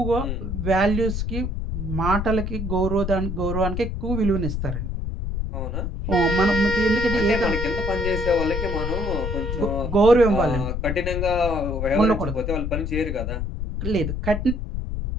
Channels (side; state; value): left; noise; rumble, 3 dB below the sound